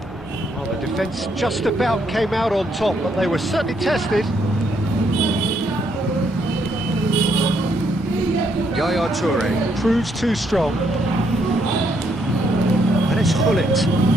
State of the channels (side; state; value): both; normal; correlation 0.73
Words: Well, the defence just about came out on top, but they were certainly tested. Yaya Toure proves too strong. And it's Hullet.